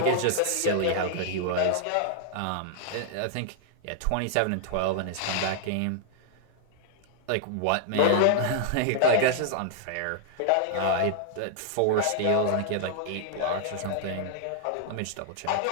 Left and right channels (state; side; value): different; both; correlation -0.01